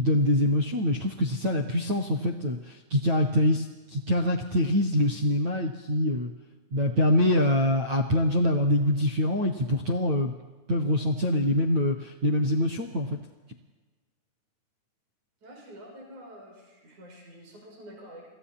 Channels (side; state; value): left; late; 9.2 ms